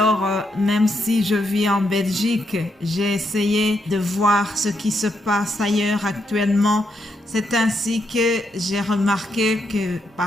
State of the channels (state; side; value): normal; both; correlation 0.80